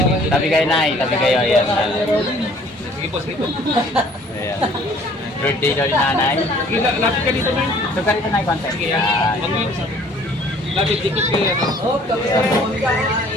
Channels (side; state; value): both; normal; correlation 0.55